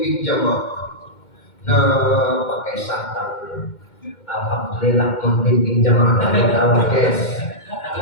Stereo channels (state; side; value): late; right; 2.1 ms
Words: jamaah. Nah, pakai santan. Alhamdulillah pembimbing jamaah dari tawa guys.